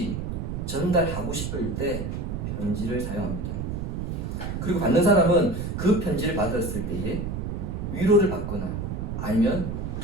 전달하고 싶을 때 편지를 사용합니다. 그리고 받는 사람은 그 편지를 받았을 때에 위로를 받거나 아니면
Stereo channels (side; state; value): right; noise; rumble, 4 dB below the sound